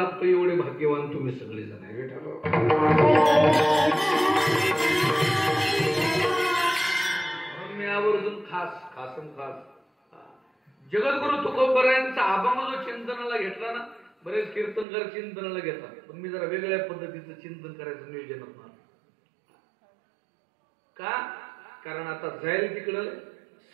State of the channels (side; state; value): left; drops out; at 14.9 s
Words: एवढे भाग्यवान तुम्ही सगळे जण आहे. मी आवर्जून खास जगद्गुरु तुकोबरायांचा अभंग जो चिंतनाला घेतला ना, बरेच कीर्तनकार चिंतनाला घेतात, पण मी जरा वेगळ्या पद्धतीचं चिंतन करायचं नियोजन होणार का, कारण आता जाईल तिकडं